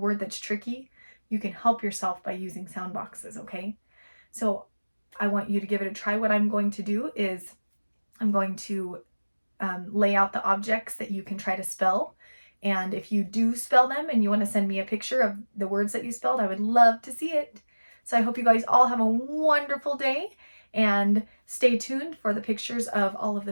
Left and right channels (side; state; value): both; inverted; correlation -1.00